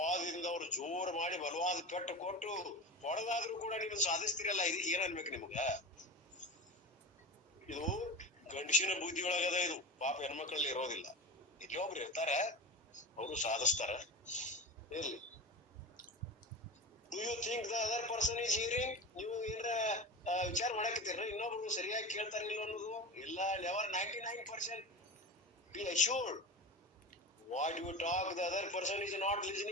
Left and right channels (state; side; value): normal; both; correlation 0.27